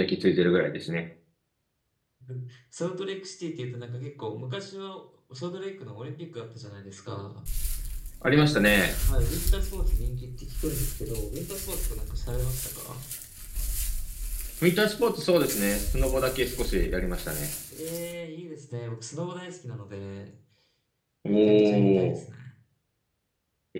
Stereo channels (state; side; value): identical; both; correlation 1.00